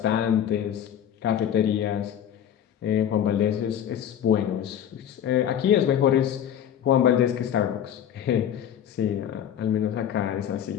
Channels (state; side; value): quieter; right; 9.7 dB